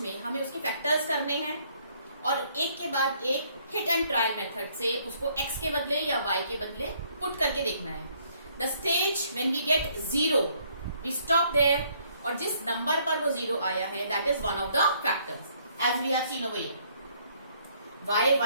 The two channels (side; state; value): both; inverted; correlation -0.65